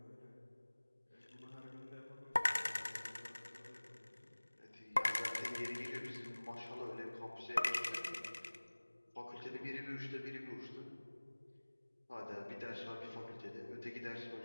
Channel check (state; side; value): inverted; both; correlation -1.00